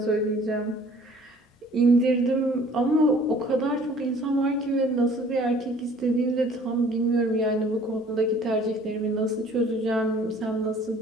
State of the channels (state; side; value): normal; both; correlation 0.53